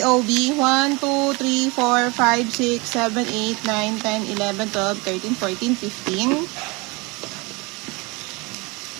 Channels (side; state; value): left; quieter; 26.4 dB